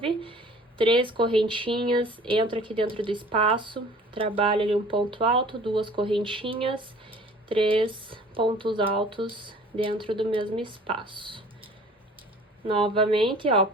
3 correntinhas, entro aqui dentro do espaço, trabalho ali um ponto alto, 2 correntinhas, 3 pontos altos dentro do mesmo espaço. Novamente, ó,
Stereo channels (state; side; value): normal; both; correlation 0.48